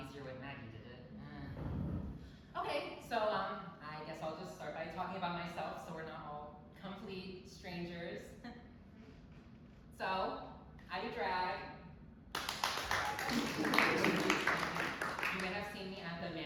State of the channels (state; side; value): identical; both; correlation 1.00